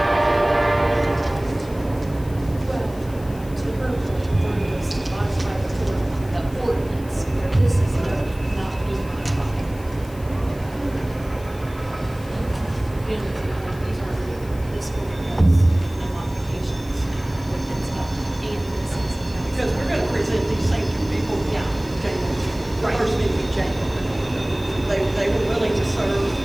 Because we're going to present these same two people, January, first meeting in January. They were willing to serve.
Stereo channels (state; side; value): noise; left; hiss, 22 dB below the sound